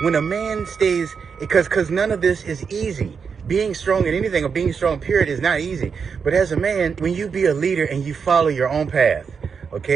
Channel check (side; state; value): left; quieter; 6.0 dB